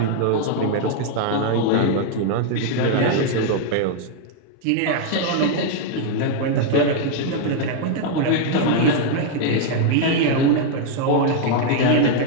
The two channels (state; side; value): different; both; correlation 0.00